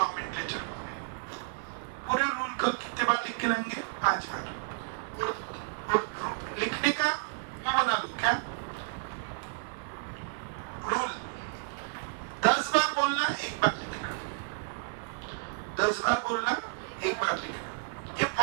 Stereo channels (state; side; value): silent; left; 57 dB below the other